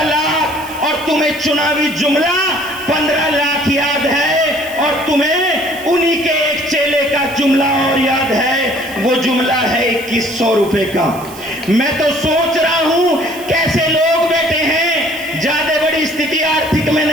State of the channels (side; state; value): right; noise; hiss, 17 dB below the sound